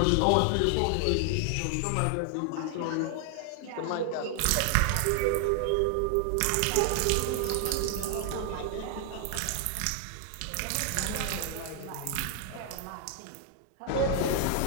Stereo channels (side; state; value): both; different; correlation 0.00